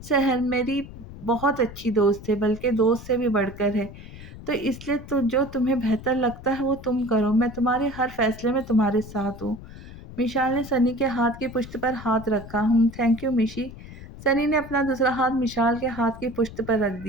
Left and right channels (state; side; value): noise; left; rumble, 15 dB below the sound